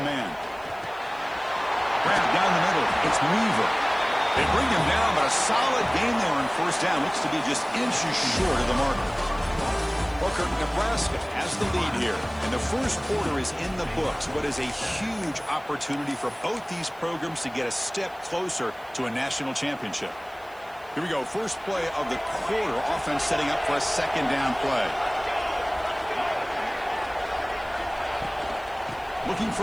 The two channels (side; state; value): right; noise; hiss, 27 dB below the sound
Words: man. Grab down the middle. It's Weaver. They bring him down, but a solid gain there on first down. Looks to be just inches short of the marker. Booker, Nebraska has the lead here. And the first quarter is in the books. What is a huge opportunity for both these programs to get a step closer to a national championship. Here we go. First play of the quarter. Offense setting up for a second down play. Looking